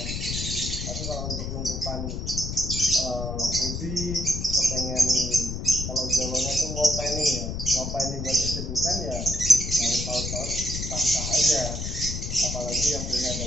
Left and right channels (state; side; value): noise; left; rumble, 4 dB below the sound